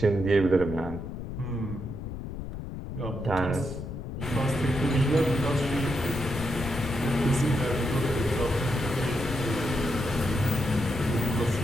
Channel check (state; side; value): noise; left; rumble, 7 dB below the sound